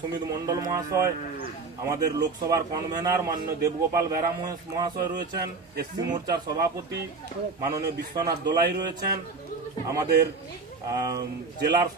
সুমিত মন্ডল মহাশয়, আমাদের লোকসভার কনভেনার মাননীয় দেবগোপাল বেরা মহাশয় রয়েছেন, এসসি মোর্চার সভাপতি মাননীয় বিশ্বনাথ দোলাই রয়েছেন, আমাদের জেলার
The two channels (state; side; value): quieter; left; 4.3 dB